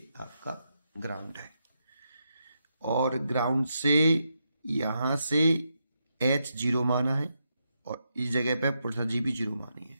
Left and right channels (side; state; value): both; inverted; correlation -0.83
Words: आपका ग्राउंड है और ग्राउंड से यहां से h जीरो माना है और इस जगह पे पोटेंशियल जी भी जीरो मानी